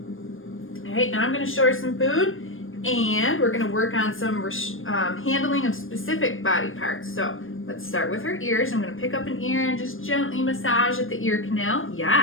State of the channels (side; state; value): right; late; 0.59 ms